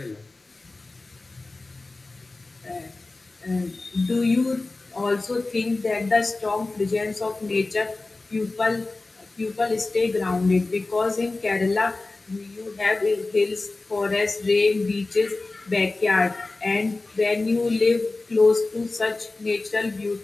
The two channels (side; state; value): right; quieter; 3.3 dB